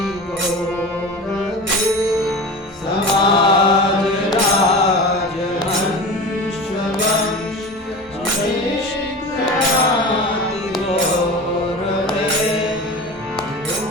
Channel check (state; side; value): normal; both; correlation 0.32